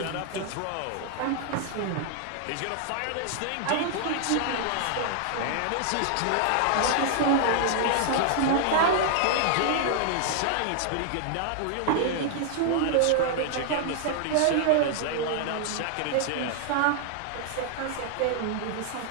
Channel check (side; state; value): both; different; correlation 0.00